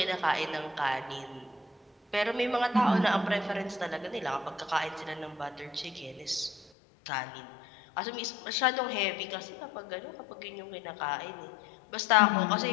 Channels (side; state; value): right; drops out; at 6.7 s